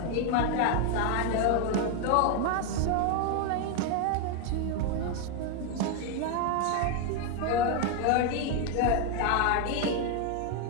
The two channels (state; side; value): different; both; correlation 0.01